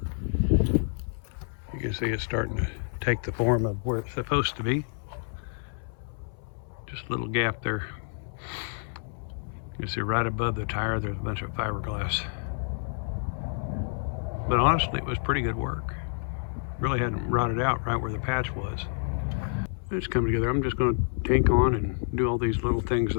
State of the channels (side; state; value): right; silent; 59 dB below the other